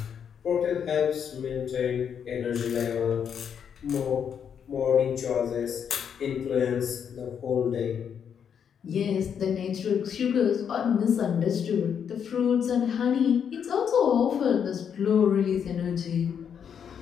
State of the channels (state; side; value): quieter; right; 7.8 dB